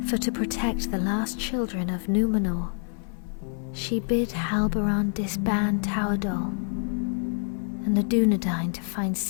For to protect the last children of Númenor, she bid Halbarand disband Tauerdal and the Dunedain to find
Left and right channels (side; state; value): right; silent; 55 dB below the other